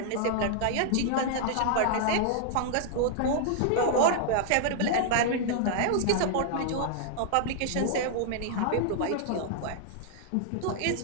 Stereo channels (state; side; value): different; both; correlation -0.01